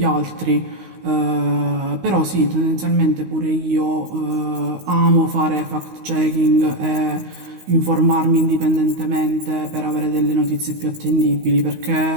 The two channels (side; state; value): left; late; 16 ms